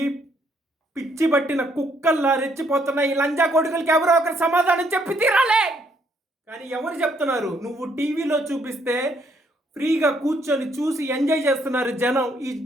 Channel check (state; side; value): normal; both; correlation 0.69